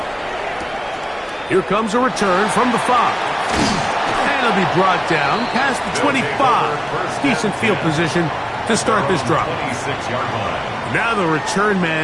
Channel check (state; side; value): identical; both; correlation 1.00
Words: Here comes a return from the 5. And he'll be brought down past the 25. Decent field position to start this drive. 26-yard line. Now the return